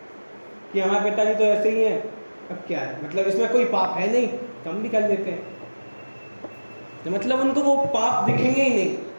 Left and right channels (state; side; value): inverted; both; correlation -1.00